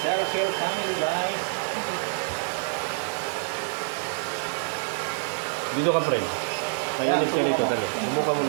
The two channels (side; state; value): left; silent; 60 dB below the other